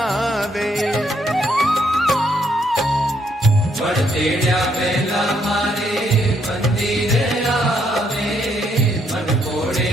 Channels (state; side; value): normal; both; correlation 0.72